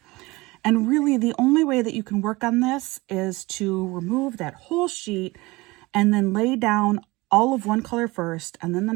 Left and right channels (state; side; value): quieter; left; 22.1 dB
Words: And really the only way that you can work on this is to remove that whole sheet and then lay down all of one color first and then the